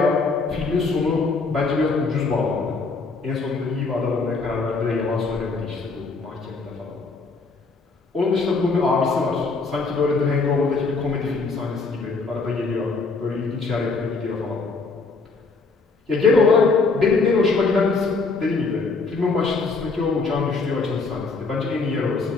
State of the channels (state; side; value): quieter; right; 4.1 dB